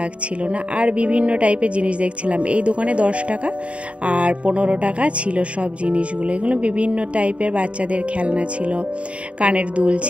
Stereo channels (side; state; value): left; late; 0.062 ms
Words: না। আর বিভিন্ন টাইপের জিনিস দেখছিলাম। এই দোকানে 10 টাকা আর 15 টাকা ছিল সব জিনিসগুলো। এগুলো বিভিন্ন টাইপের বাচ্চাদের খেলনা ছিল, কানের দুল